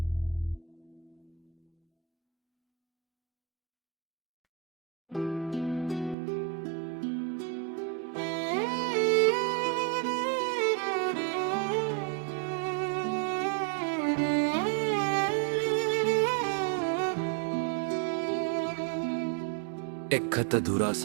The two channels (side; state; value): left; drops out; at 6.2 s